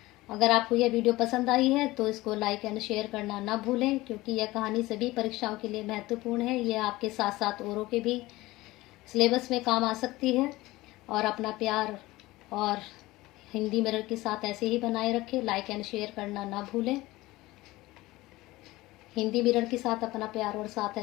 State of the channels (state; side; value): quieter; right; 19.1 dB